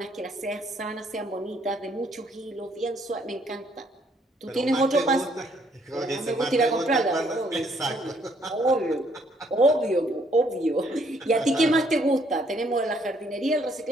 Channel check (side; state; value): both; normal; correlation 0.67